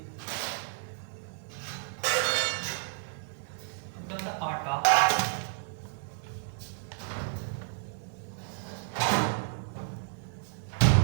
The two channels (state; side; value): silent; left; 57 dB below the other